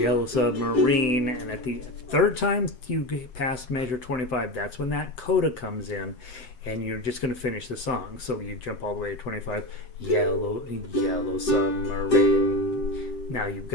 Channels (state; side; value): late; right; 7.8 ms